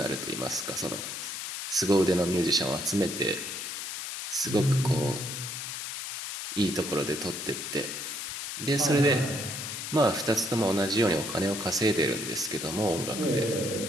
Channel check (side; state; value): left; noise; hiss, 6 dB below the sound